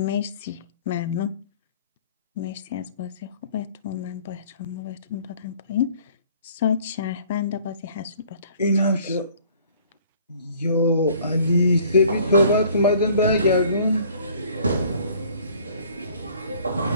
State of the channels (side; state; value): both; inverted; correlation -0.54